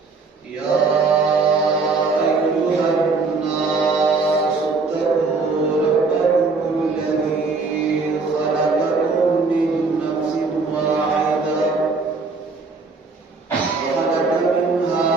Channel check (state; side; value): quieter; left; 4.2 dB